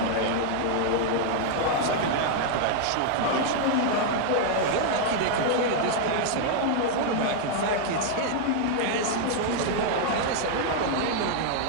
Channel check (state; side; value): different; both; correlation -0.01